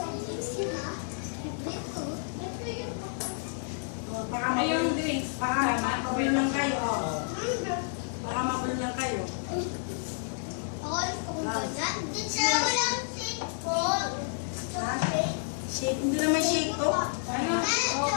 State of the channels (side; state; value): right; silent; 58 dB below the other